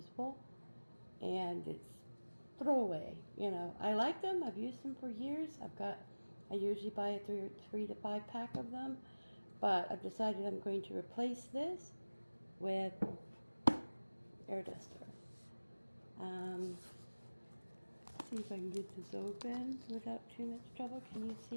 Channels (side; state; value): both; inverted; correlation -1.00